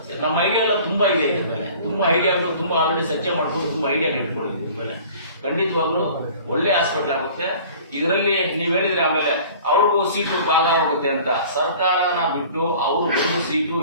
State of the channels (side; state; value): both; inverted; correlation -0.46